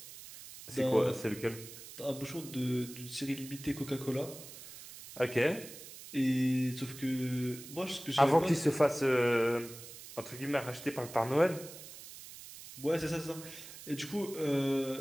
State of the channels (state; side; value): noise; right; hiss, 14 dB below the sound